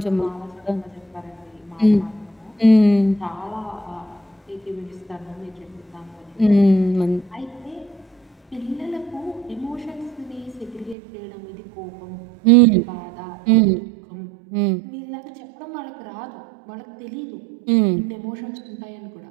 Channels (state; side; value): drops out; left; at 11.0 s